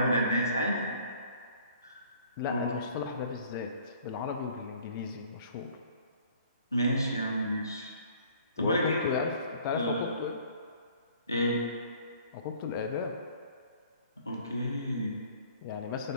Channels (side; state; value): both; inverted; correlation -0.54